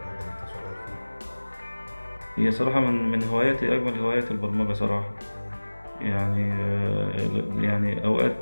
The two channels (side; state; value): both; inverted; correlation -1.00